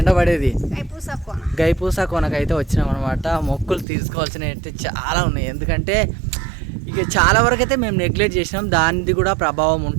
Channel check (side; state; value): left; drops out; at 3.9 s